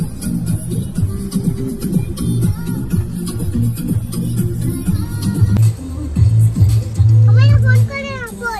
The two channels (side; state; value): both; identical; correlation 1.00